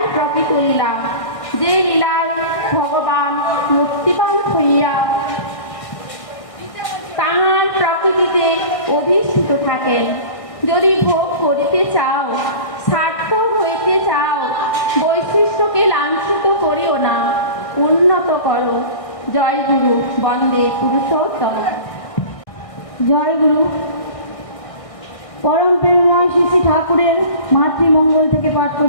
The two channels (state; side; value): late; right; 1.6 ms